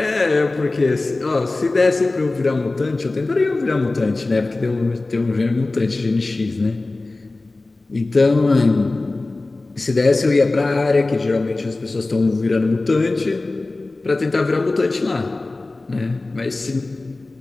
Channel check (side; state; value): right; quieter; 3.2 dB